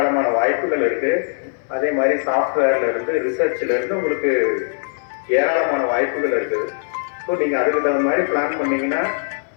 வாய்ப்புகள் இருக்கு. அதே மாதிரி சாஃப்ட்வேர்ல இருந்து, ரிசர்ச்ல இருந்து உங்களுக்கு ஏராளமான வாய்ப்புகள் இருக்குது. ஸோ நீங்க அதுக்கு தகுந்த மாதிரி பிளான் பண்ணீங்கன்னா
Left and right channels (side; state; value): right; silent; 65 dB below the other